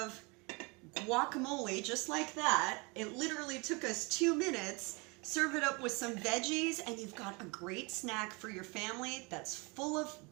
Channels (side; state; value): left; quieter; 28.6 dB